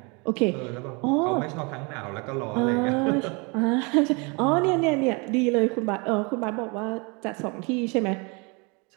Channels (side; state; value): left; quieter; 30.4 dB